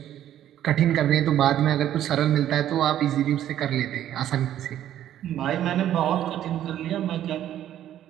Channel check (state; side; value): quieter; left; 11.6 dB